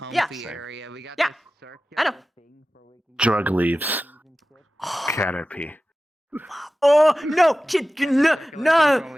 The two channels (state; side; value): normal; both; correlation 0.95